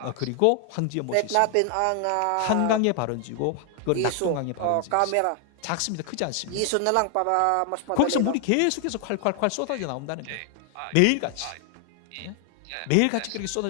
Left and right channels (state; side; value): different; both; correlation 0.00